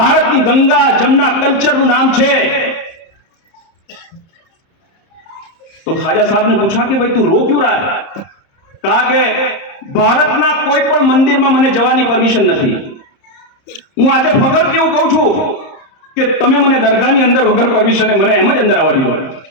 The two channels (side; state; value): right; late; 30 ms